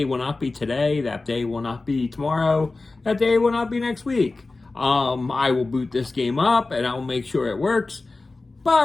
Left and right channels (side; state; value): right; quieter; 3.4 dB